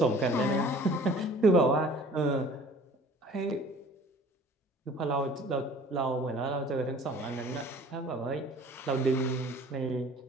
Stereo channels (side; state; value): both; normal; correlation 0.49